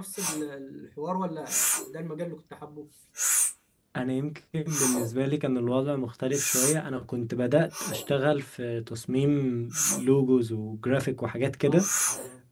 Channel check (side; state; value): both; identical; correlation 1.00